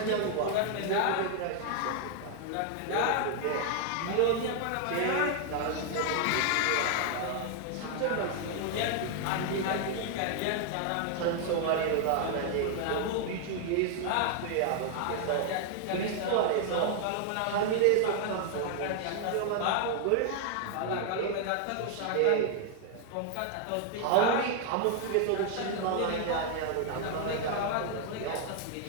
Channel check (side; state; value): both; different; correlation 0.00